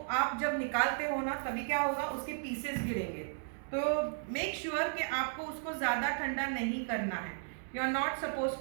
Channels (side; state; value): left; silent; digital silence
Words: आप जब निकालते हो ना तभी क्या होगा, उसके पीसेस गिरेंगे। तो मेक श्योर कि आपको उसको ज्यादा ठंडा नहीं करना है। You are not suppose